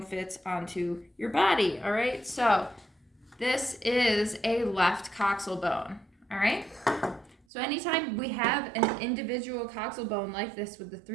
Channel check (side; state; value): left; drops out; at 7.5 s